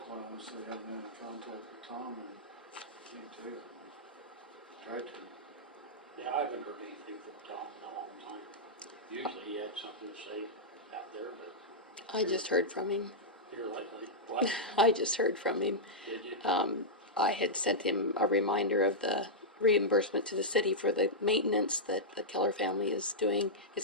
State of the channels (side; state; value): both; normal; correlation -0.10